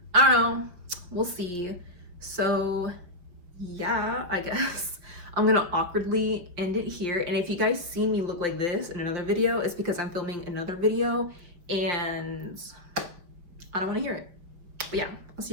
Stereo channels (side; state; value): left; late; 5.6 ms